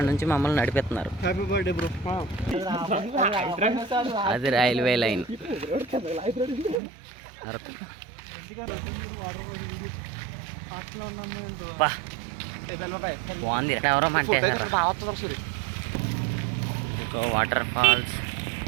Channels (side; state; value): left; drops out; at 6.8 s